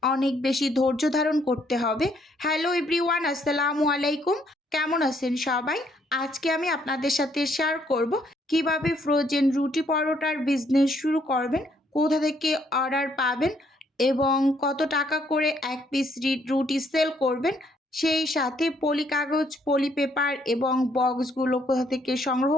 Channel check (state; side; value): normal; both; correlation 0.69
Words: অনেক বেশি ধৈর্য ধারণ করতে হবে। হ্যালো এভরিওয়ান, আসসালামু আলাইকুম। কেমন আছেন সবাই? আজকে আমি আপনাদের সাথে শেয়ার করব কিভাবে ফ্রোজেন রুটি পরোটার বিজনেস শুরু করবেন, কোথা থেকে অর্ডার পাবেন এবং কত টাকা করে এক পিস রুটি সেল করবেন। সেই সাথে পলি কাগজ, পলি পেপার এবং বক্সগুলো কোথা থেকে সংগ্রহ